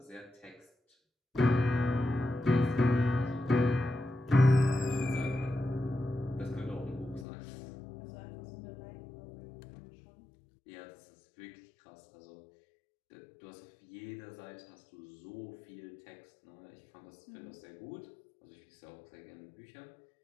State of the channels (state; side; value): drops out; right; at 7.2 s